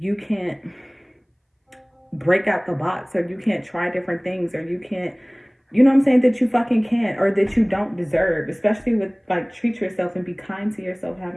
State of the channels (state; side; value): identical; both; correlation 1.00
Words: can't break out the box, or you can't try different things, or you can't, you know what I'm saying, that you fucking can't, or that you don't deserve. Especially with like, treat yourself and be kind to yourself,